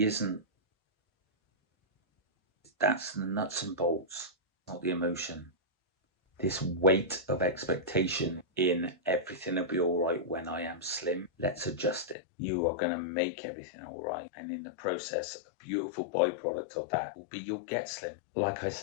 isn't. That's the nuts and bolts, not the emotion. This weight of expectation in everything will be all right when I am slim. Let's adjust it. You are going to make everything all right. And in the process, a beautiful byproduct of that will be you'll get slim. Like I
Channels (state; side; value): drops out; right; at 12.2 s